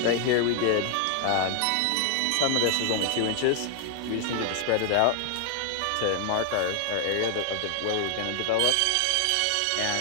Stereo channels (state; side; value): different; both; correlation 0.00